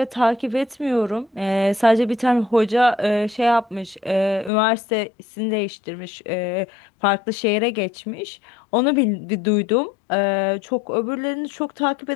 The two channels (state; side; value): drops out; right; at 4.5 s